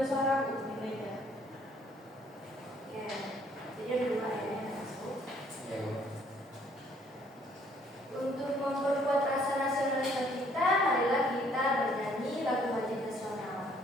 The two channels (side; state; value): both; normal; correlation 0.63